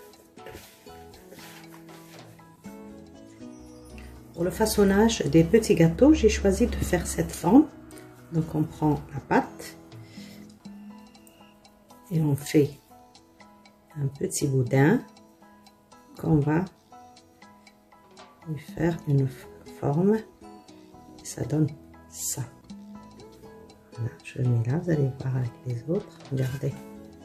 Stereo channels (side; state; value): both; identical; correlation 1.00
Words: Pour le façonnage des petits gâteaux, j'ai choisi de faire cette forme. Donc, on prend la pâte et on fait un petit boudin qu'on va lui faire une forme. Et ça donne ça. Voilà, je le mets là, vous allez voir avec les autres. Regardez,